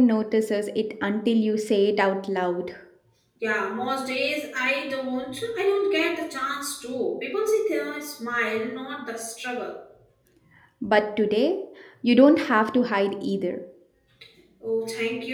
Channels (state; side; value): identical; both; correlation 1.00